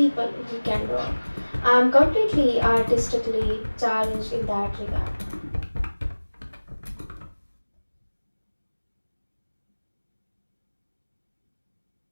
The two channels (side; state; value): both; inverted; correlation -1.00